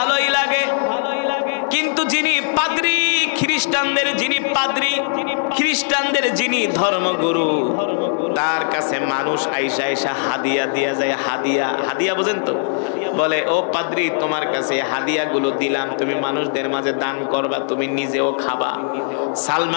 লাগে, কিন্তু যিনি পাদ্রী, খ্রিস্টানদের যিনি পাদ্রী, খ্রিস্টানদের যিনি ধর্মগুরু, তার কাছে মানুষ আইসা আইসা হাদিয়া দিয়া যায়। হাদিয়া, হাদিয়া বোঝেন তো? বলে, ও পাদ্রী, তোমার কাছে হাদিয়াগুলো দিলাম, তুমি মানুষদের মাঝে দান করবা, তুমি নিজেও খাবা।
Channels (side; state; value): right; silent; digital silence